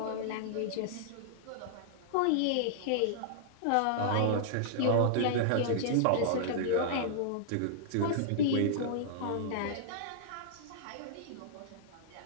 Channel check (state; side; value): different; both; correlation -0.01